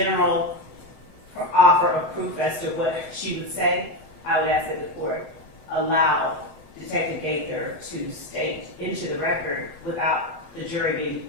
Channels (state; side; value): late; left; 6.7 ms